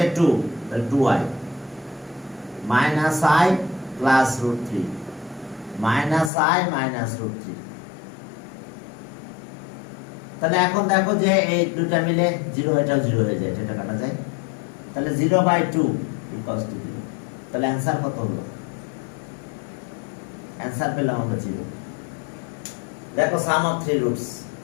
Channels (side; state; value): right; drops out; at 6.3 s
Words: 2 তাহলে 2i minus I plus root 3 minus I minus root 3 তাহলে এখন দেখো যে এই দুটো মিলে 0 এটাও 0 হয়ে যায় এটা কাটা যায় তাহলে 0 by 2 equals to 0 তাহলে आंसर কত হলো आंसर পেলাম আমরা 0 দেখো sum of 3 roots